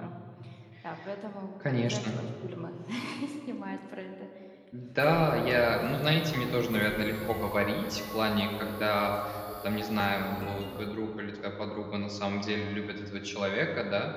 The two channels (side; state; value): both; identical; correlation 1.00